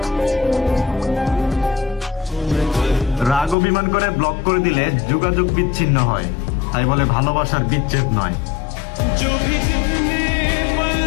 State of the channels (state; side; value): drops out; right; at 3.6 s